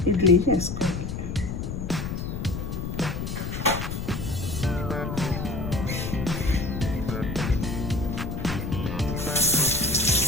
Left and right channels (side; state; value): left; noise; rumble, 5 dB below the sound